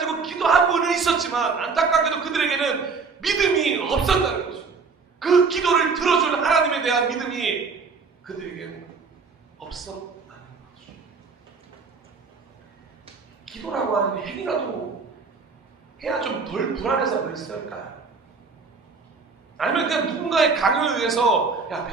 기도하고는 있었지만 안타깝게도 그들에게는 믿음이 없었다는 거죠. 그 기도를 들어줄 하나님에 대한 믿음이 그들에게는 없었다는 거죠. 기도라고 하는 행위라도 해야 좀 덜 불안해서 그랬을까요? 아니면 그냥 누군가의 강요에 의해서 야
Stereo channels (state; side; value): quieter; left; 4.8 dB